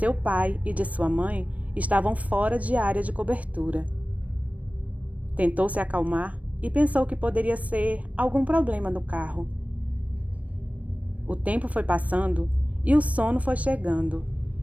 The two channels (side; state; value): left; late; 0.068 ms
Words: pai e de sua mãe, estavam fora de área de cobertura. Tentou se acalmar e pensou que poderia ser algum problema no carro. O tempo foi passando e o sono foi chegando.